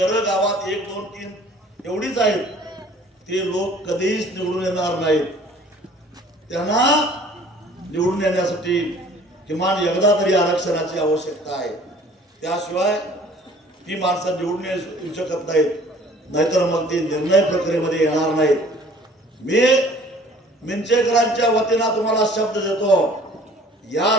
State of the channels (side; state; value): both; normal; correlation 0.52